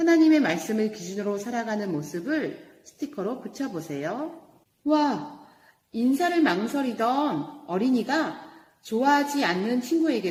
말씀을 기준으로 살아가는 모습을 스티커로 붙여보세요. 와, 인사를 망설이던 어린이가 좋아하지 않는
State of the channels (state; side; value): identical; both; correlation 1.00